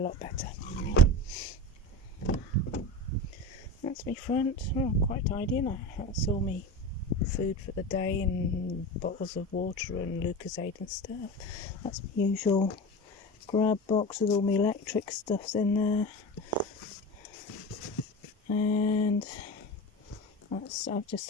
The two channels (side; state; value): both; normal; correlation 0.28